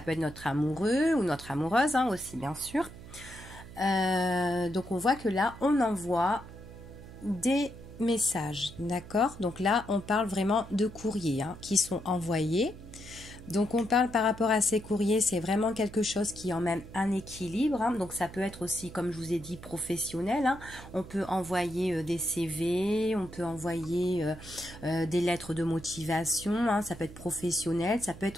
être notre amoureux ou notre amoureuse aussi, bien sûr. Donc on voit que là on envoie des messages, d'accord? Donc là on parle vraiment de courriers qui sont envoyés. Donc on parle par rapport à ces courriers, c'est vraiment quelque chose qui emmène un équilibre. Donc ça peut être aussi, comme je vous ai dit, professionnel. On peut envoyer des CV, on peut envoyer des lettres de motivation. Ça peut être professionnel, ça peut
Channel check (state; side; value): noise; right; hum, 16 dB below the sound